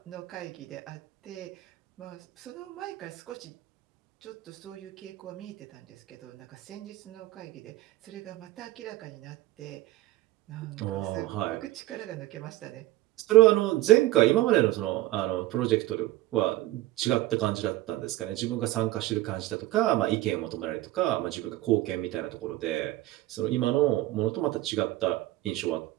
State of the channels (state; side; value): quieter; left; 16.5 dB